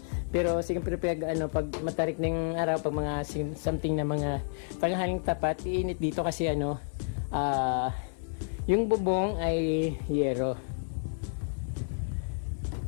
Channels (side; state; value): right; silent; 58 dB below the other